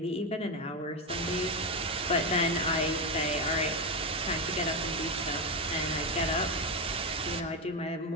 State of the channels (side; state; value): both; normal; correlation 0.10